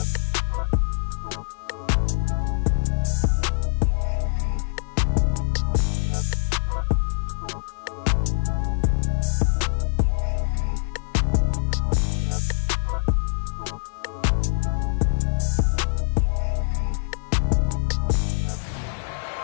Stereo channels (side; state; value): right; silent; 58 dB below the other